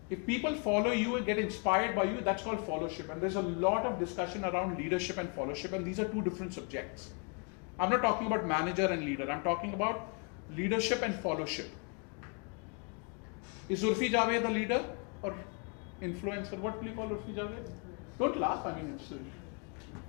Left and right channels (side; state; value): right; quieter; 36.6 dB